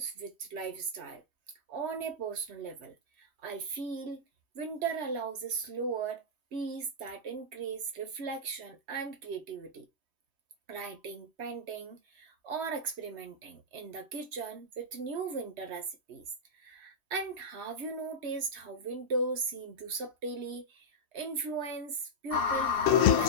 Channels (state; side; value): late; left; 3.2 ms